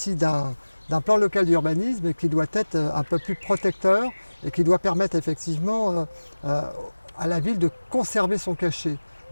d'un plan local d'urbanisme qui doit être un peu plus protecteur et qui doit permettre effectivement à la ville de conserver son cachet.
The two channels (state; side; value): inverted; both; correlation -1.00